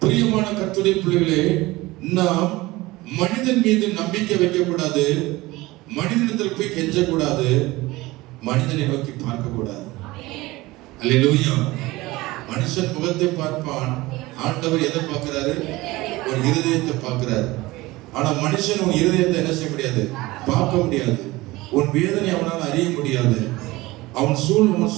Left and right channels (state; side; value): quieter; left; 20.0 dB